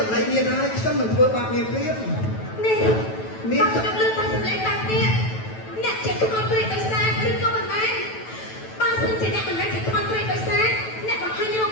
ម្លេងមានហើយខ្ញុំនឹងធ្វើបាបមានព្រៀប នេះ មាន ខ្ញុំលើកតាមសំឡេងបែបនេះអ្នកជាខ្មោចព្រាយដោយសារឬក៏មិនមែនបើសិនជាអ្នកមិនមែនជាខ្មោចព្រាយដោយសារអ្នកបង្ហាញរូប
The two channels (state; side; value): late; right; 9.2 ms